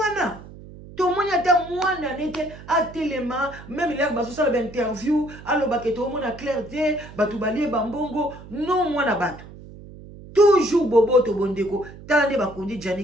Tout le monde a mwana nete a téléma, même il a baso ça l'interview, allo baké tout le monde a clarté, batu balie bambongo, non mwana batu. Toujours bobo to bondeko, tande bakundi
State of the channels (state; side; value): noise; right; hum, 17 dB below the sound